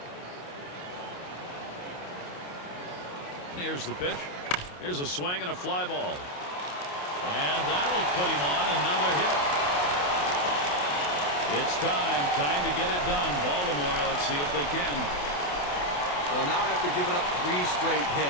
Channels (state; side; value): late; right; 28 ms